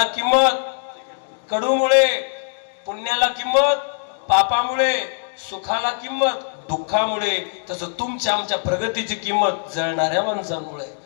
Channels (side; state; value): right; silent; digital silence